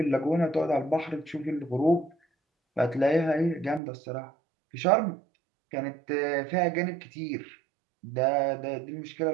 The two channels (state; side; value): drops out; left; at 3.8 s